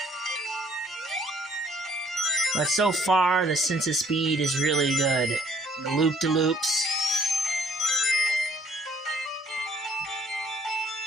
But so far, the sense of speed is really good. The loop-de-loops.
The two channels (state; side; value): normal; both; correlation 0.62